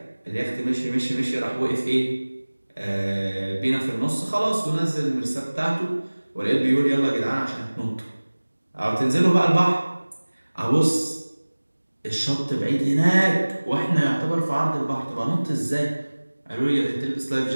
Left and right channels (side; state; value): both; inverted; correlation -1.00